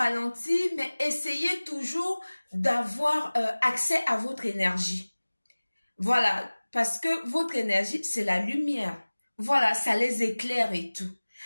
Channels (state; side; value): inverted; both; correlation -1.00